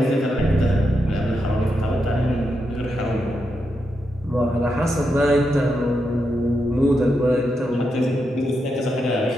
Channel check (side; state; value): both; normal; correlation 0.84